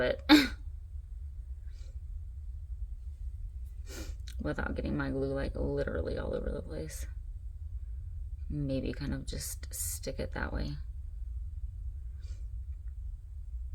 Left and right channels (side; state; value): both; identical; correlation 1.00